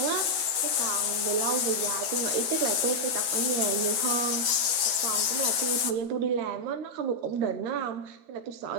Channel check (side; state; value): left; late; 12 ms